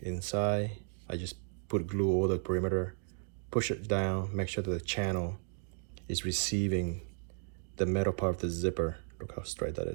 inside. I just put glue over the perimeter, push it down, make sure that the channel is receiving the metal part of the zipper. Look how straight that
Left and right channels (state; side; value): silent; left; 55 dB below the other